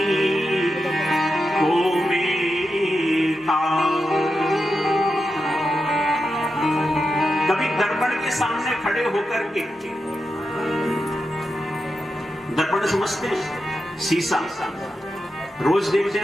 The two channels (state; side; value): normal; both; correlation 0.88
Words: को में कभी दर्पण के सामने खड़े होकर के, दर्पण समझते हैं, शीशा रोज देखते